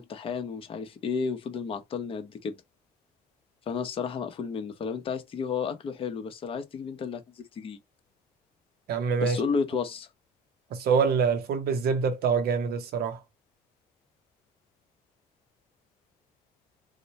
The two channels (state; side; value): normal; both; correlation 0.35